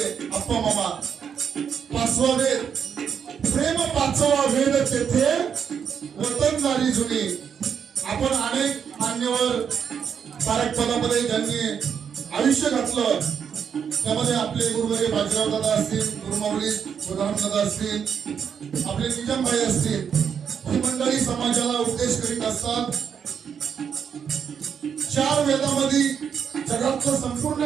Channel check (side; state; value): left; quieter; 7.4 dB